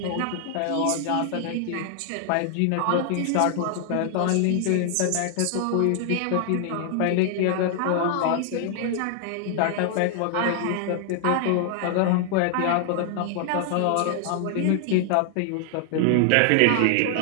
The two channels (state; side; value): different; both; correlation 0.00